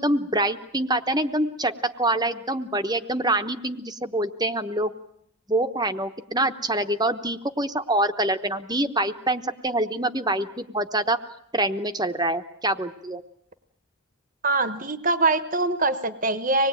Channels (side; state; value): both; normal; correlation 0.11